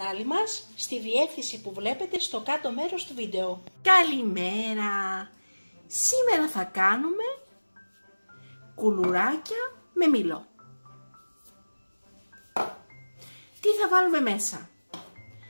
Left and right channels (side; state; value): both; inverted; correlation -1.00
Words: μας στη διεύθυνση που βλέπετε στο κάτω μέρος του βίντεο. Καλημέρα! Σήμερα θα κάνουμε κουλουράκια με μήλο. Τι θα βάλουμε μέσα?